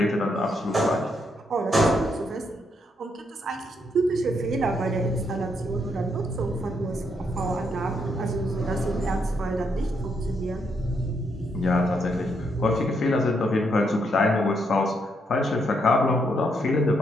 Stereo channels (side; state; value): both; normal; correlation 0.76